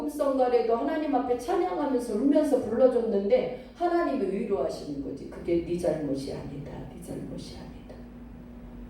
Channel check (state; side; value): identical; both; correlation 1.00